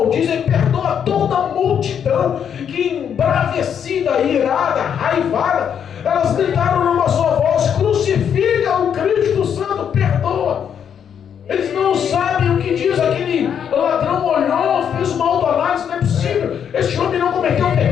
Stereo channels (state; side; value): quieter; right; 8.2 dB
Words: perdoa toda a multidão que, embravecida, irada, raivada, elas gritaram numa só voz: crucifica o Cristo Santo, perdoa. Eles não sabem o que diz. Aquele ladrão olhou, fez uma autoanálise: não é possível, este homem não cometeu